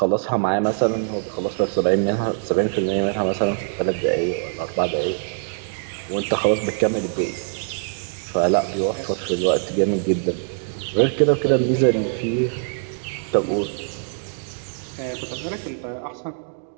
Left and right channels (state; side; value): silent; left; digital silence